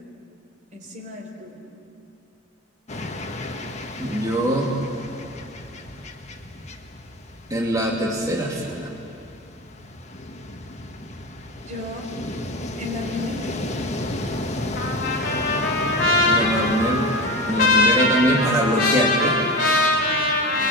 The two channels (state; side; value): normal; both; correlation 0.26